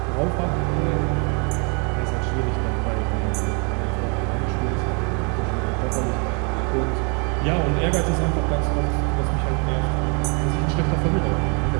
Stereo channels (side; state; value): left; quieter; 35.3 dB